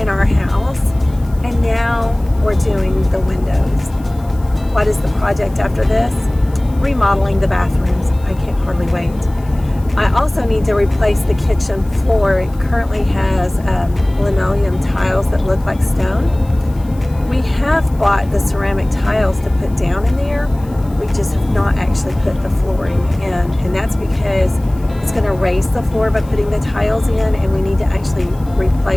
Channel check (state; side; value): noise; left; hiss, 27 dB below the sound